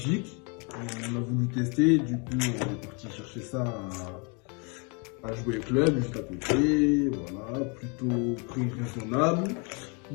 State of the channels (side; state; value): right; quieter; 33.7 dB